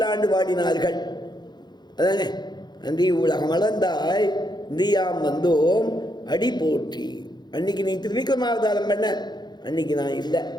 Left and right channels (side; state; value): right; late; 0.21 ms